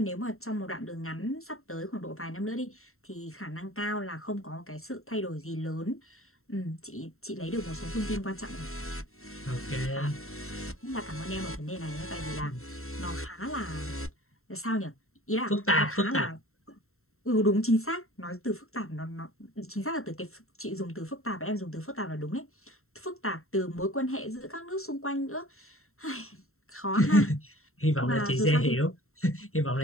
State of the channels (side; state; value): right; late; 0.62 ms